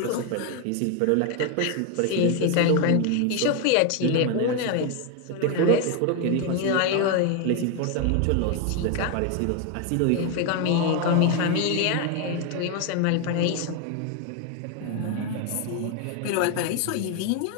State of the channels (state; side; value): different; both; correlation 0.01